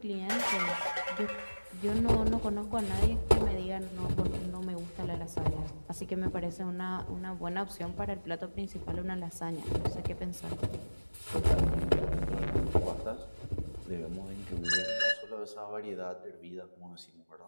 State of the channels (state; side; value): inverted; both; correlation -1.00